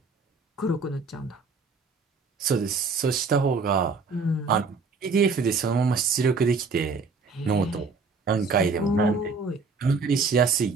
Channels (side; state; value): left; quieter; 4.4 dB